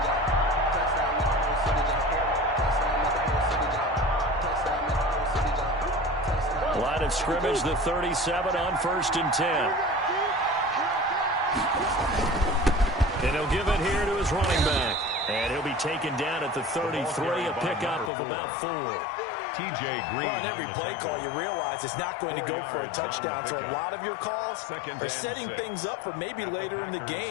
Line of scrimmage, the 37 on 1st and 10. And he'll give it here to his running back. And he'll be taken down at the 33, a pickup of about 4. T.J. Green. Well, on every play call, you realize it's not going to go for a touchdown. So a lot of your calls are setting things up for maybe later in the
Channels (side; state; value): right; drops out; at 18.1 s